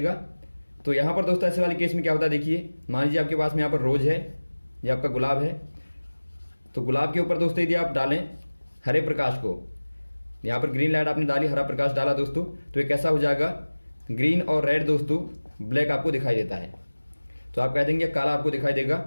तो यहाँ पर दोस्तों ऐसे वाले केस में क्या होता है, देखिए मान लीजिए आपके पास में यहाँ पर रोज है, ये आपका गुलाब है। तो गुलाब के ऊपर दोस्तों यदि आप डालें हरे प्रकाश को, यहाँ पर ग्रीन लाइट आपने डाली, हरा प्रकाश डाला दोस्तों, तो ये कैसा हो जाएगा, ग्रीन और रेड दोस्तों ब्लैक आपको दिखाई देता है। तो आप कह देंगे काला आपको दिखाई देगा,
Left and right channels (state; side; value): inverted; both; correlation -1.00